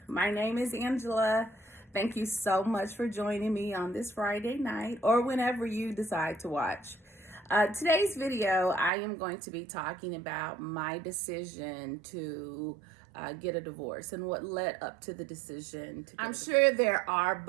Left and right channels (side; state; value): left; drops out; at 8.9 s